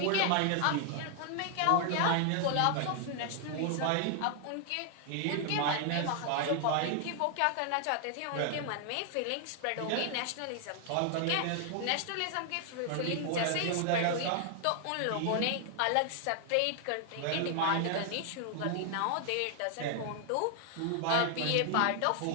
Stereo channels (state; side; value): different; both; correlation 0.00